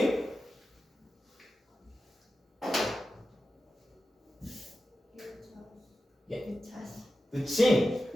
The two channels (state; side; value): normal; both; correlation 0.93